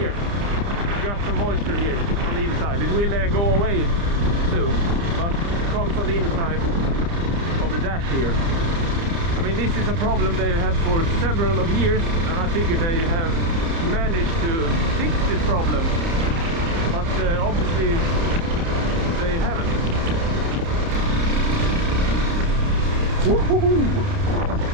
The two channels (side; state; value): left; late; 30 ms